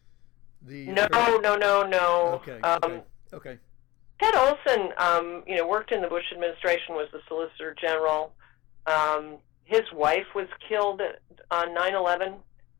No. Okay. Ted Olson, worked in the Bush administration, was the Solicitor General. His wife was killed on 9/11.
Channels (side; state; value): right; quieter; 19.5 dB